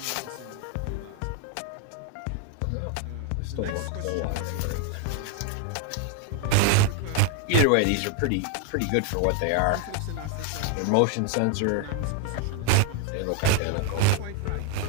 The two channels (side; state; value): both; different; correlation 0.01